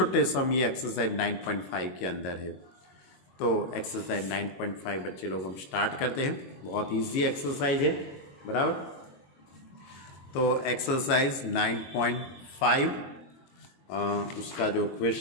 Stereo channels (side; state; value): right; late; 22 ms